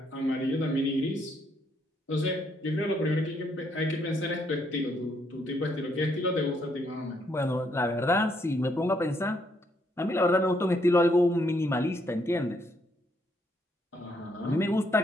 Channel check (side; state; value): both; normal; correlation 0.72